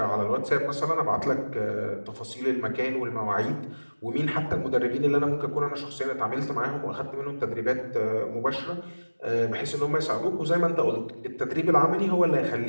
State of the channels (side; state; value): both; inverted; correlation -1.00